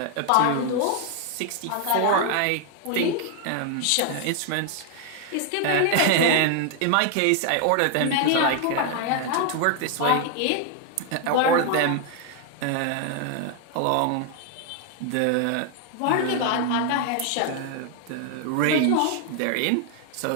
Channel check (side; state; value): both; different; correlation 0.00